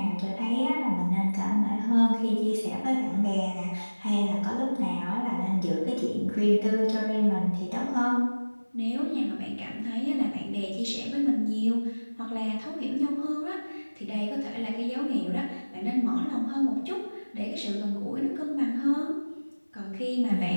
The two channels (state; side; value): inverted; both; correlation -1.00